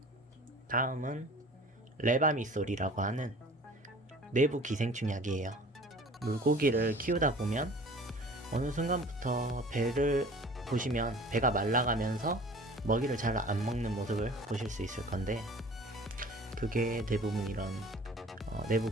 다음은 레바미솔이라고 하는 내부 기생충 약이에요. 물고기를 키우다 보면 어느 순간부터 배를 보시면 배가 말라가면서 먹이를 잘 안 먹는 모습을 보실 수 있을 건데, 그게 대부분 이런 내부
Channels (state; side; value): normal; both; correlation 0.45